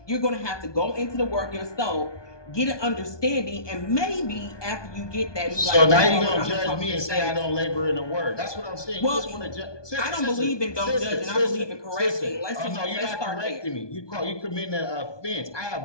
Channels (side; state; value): right; late; 1.2 ms